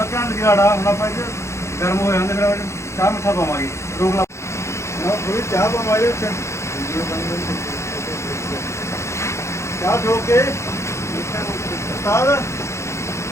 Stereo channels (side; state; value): right; late; 0.14 ms